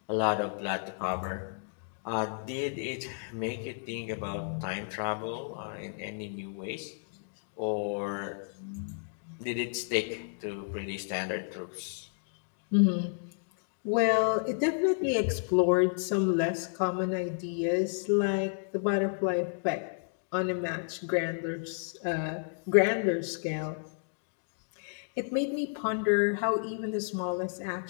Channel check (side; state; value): right; silent; digital silence